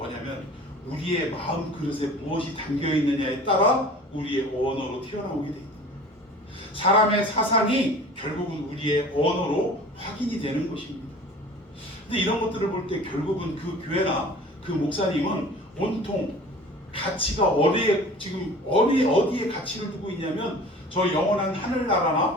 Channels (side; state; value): both; normal; correlation 0.43